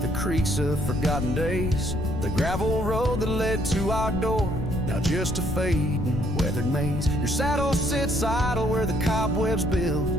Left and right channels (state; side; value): noise; left; rumble, 4 dB below the sound